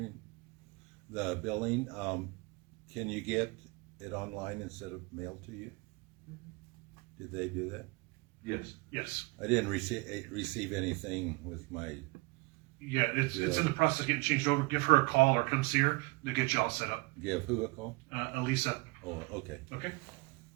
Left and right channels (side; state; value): left; quieter; 26.6 dB